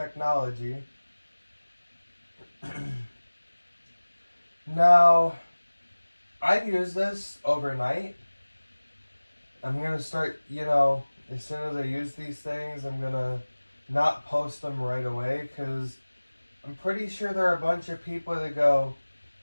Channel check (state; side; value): inverted; both; correlation -1.00